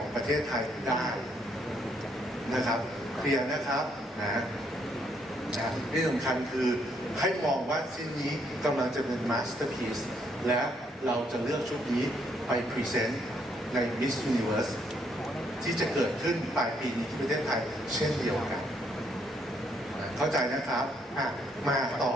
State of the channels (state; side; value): normal; both; correlation 0.71